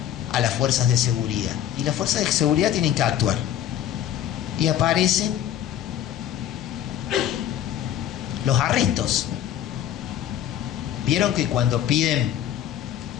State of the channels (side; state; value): right; quieter; 10.9 dB